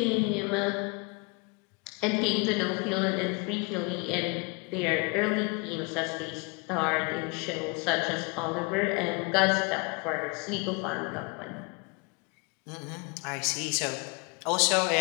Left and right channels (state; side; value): quieter; right; 31.3 dB